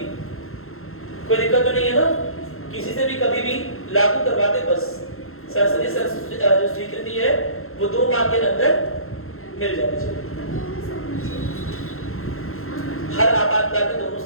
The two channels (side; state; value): right; late; 0.62 ms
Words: कोई दिक्कत तो नहीं है ना? किसी से भी कभी भी लागू करवा दे बस। संसदीय जो स्वीकृति है वो 2 माह के अंदर मिल जानी चाहिए। हर आपातकाल में दोनों